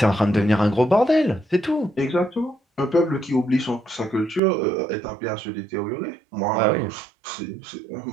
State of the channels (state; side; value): drops out; left; at 4.4 s